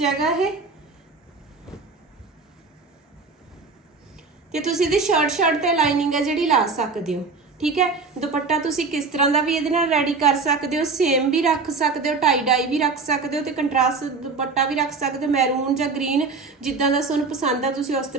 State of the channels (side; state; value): left; quieter; 4.3 dB